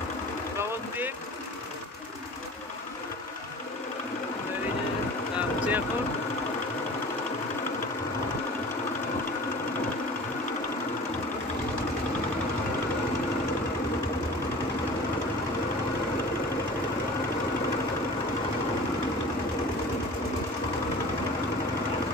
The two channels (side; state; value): both; normal; correlation 0.41